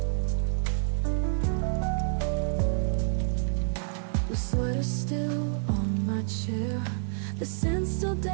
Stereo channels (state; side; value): silent; left; 59 dB below the other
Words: The sweater still on my chair, the scent still